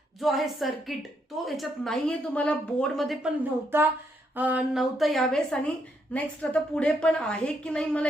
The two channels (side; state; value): both; normal; correlation 0.76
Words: जो आहे सर्किट तो याच्यात नाहीये. तुम्हाला बोर्डमध्ये पण नव्हता यावेळेस आणि नेक्स्ट आता पुढे पण आहे की नाही मला